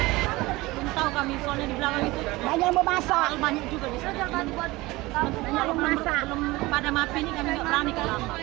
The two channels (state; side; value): quieter; left; 20.6 dB